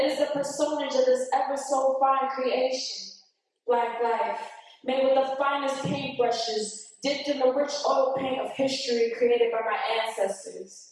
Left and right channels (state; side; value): identical; both; correlation 1.00